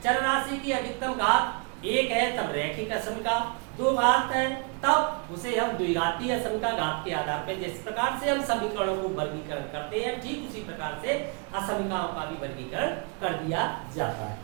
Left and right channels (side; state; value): left; quieter; 35.1 dB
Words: चर राशि की अधिकतम घात एक है तब रैखिक असमिका, दो घात है तब उसे हम द्विघातीय असमिका घात के आधार पर, जिस प्रकार से हम समीकरणों को वर्गीकरण करते हैं ठीक उसी प्रकार से असमिकाओं का भी वर्गीकरण कर दिया जाता